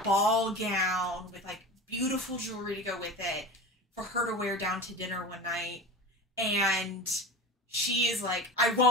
ball gown with, like, beautiful jewelry to go with it for her to wear down to dinner one night. And she is like,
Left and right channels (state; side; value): normal; both; correlation 0.31